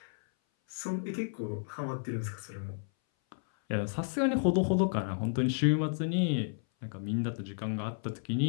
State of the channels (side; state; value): right; silent; 56 dB below the other